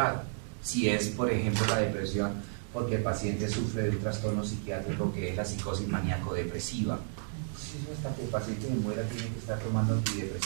Si es, por ejemplo, la depresión, porque el paciente sufre de un trastorno psiquiátrico que es la psicosis maníaco-depresiva. Hasta que el paciente se muera tiene que estar tomando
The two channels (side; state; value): left; silent; digital silence